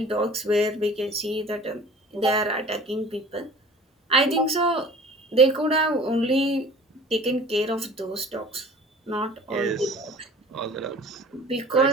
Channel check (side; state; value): both; normal; correlation 0.45